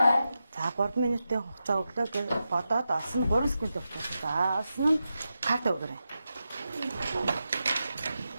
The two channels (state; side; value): inverted; both; correlation -0.90